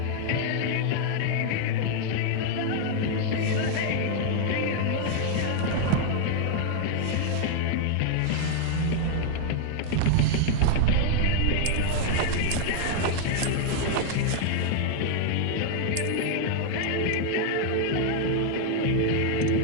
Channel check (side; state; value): both; different; correlation 0.00